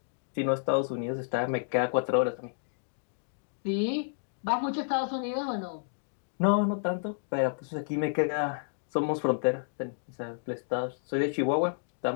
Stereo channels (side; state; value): right; silent; digital silence